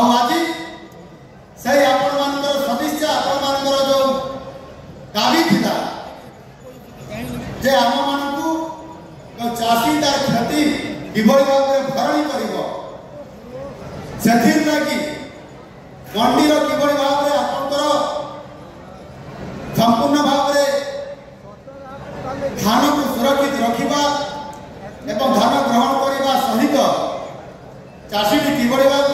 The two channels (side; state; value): both; identical; correlation 1.00